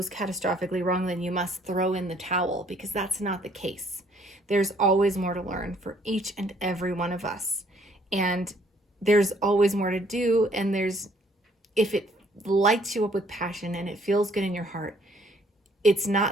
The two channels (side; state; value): both; normal; correlation 0.63